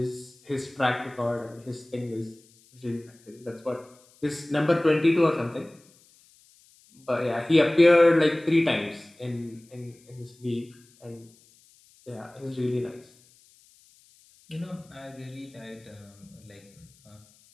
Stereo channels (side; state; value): left; noise; hiss, 29 dB below the sound